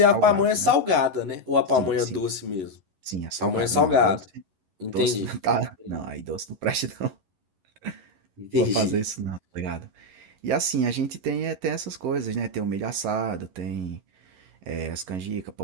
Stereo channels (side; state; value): left; late; 11 ms